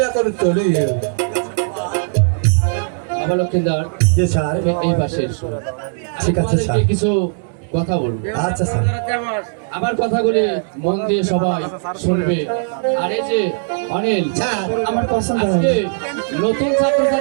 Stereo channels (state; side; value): silent; left; digital silence